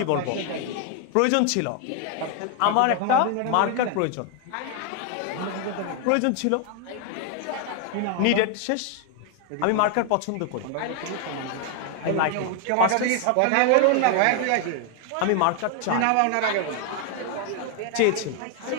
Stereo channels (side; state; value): both; different; correlation 0.00